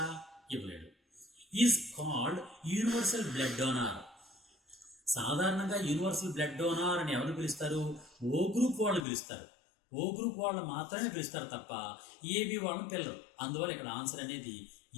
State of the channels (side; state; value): right; drops out; at 9.1 s